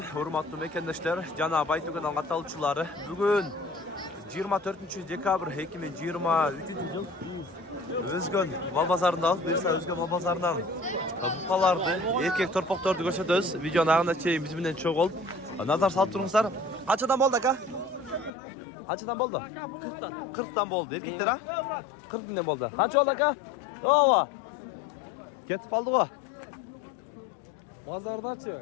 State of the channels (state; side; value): drops out; right; at 18.3 s